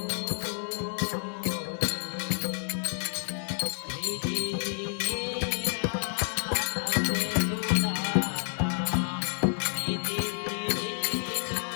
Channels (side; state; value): right; silent; digital silence